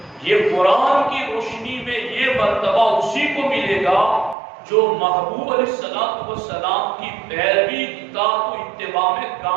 یہ قرآن کی روشنی میں یہ مرتبہ اسی کو ملے گا جو محبوب علیہ السلام کی پیروی، اطاعت و اتباع میں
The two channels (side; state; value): left; drops out; at 4.4 s